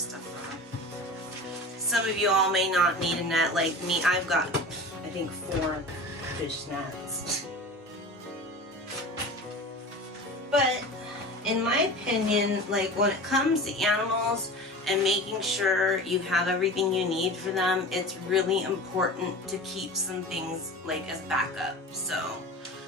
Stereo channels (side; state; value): both; normal; correlation 0.34